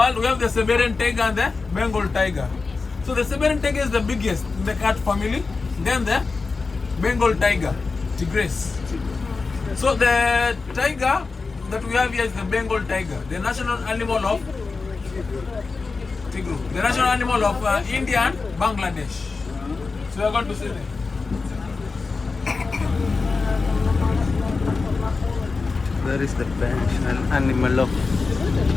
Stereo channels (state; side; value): quieter; right; 4.2 dB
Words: We have the Siberian tiger and the Bengal tiger. So the Siberian tiger is the biggest in the cat family. Then the Bengal tiger, tigress. So the tiger that we have here is the Bengal tiger, the national animal of Tigru, the national animal of India and Bangladesh. So we are going to see them. Where is the national animal of?